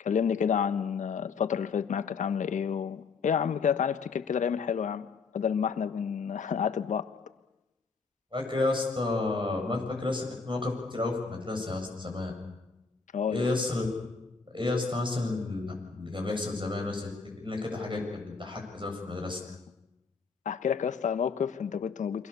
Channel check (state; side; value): quieter; right; 4.9 dB